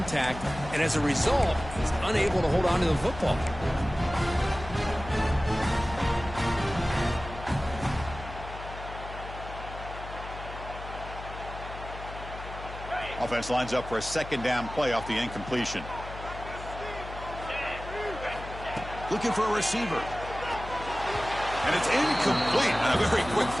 and as a result, he's unable to hold on to the football. offense lines up for a second down play off the incompletion. Looking for a receiver. And it's incomplete on a very quick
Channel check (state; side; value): noise; left; hum, 11 dB below the sound